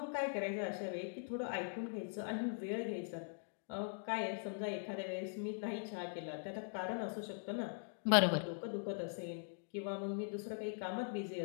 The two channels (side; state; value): right; silent; digital silence